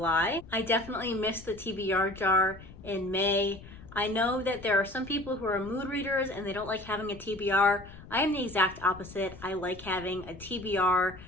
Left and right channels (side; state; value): left; noise; rumble, 17 dB below the sound